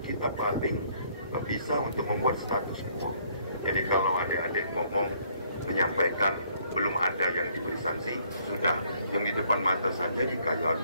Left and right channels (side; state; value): both; inverted; correlation -0.65